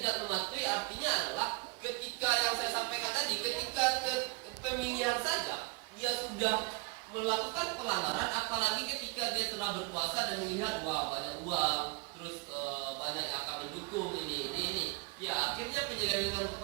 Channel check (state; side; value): quieter; left; 29.6 dB